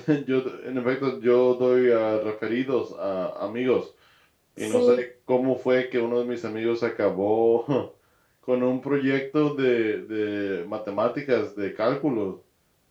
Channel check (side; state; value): both; identical; correlation 1.00